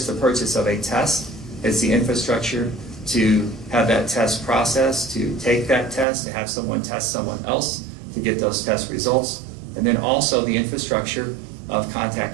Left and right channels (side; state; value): left; drops out; at 6.1 s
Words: the purchase of a test, it's the infrastructure to have that test processed, to take that test, to have someone test someone else, to get those test results, and then also the infrastructure of